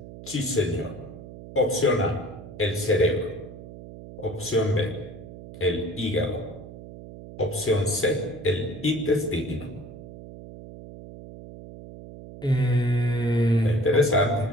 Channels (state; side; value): noise; right; hum, 15 dB below the sound